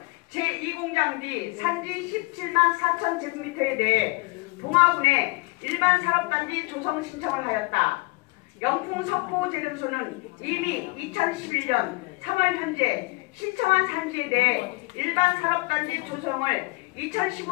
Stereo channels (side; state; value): right; quieter; 25.5 dB